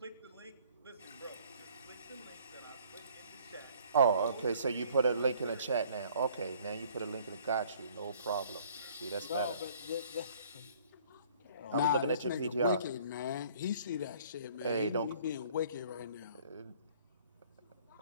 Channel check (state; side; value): inverted; both; correlation -0.56